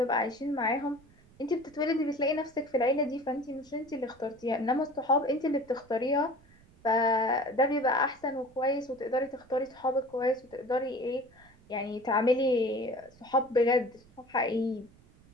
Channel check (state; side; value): noise; right; rumble, 27 dB below the sound